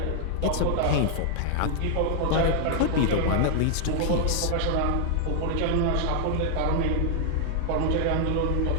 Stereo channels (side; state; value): both; different; correlation 0.00